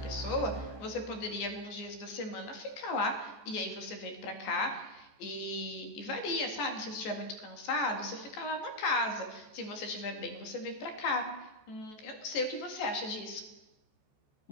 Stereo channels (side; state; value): right; late; 14 ms